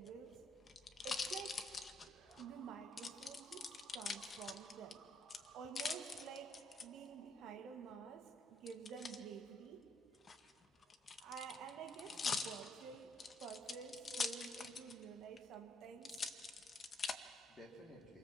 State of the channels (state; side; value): normal; both; correlation 0.72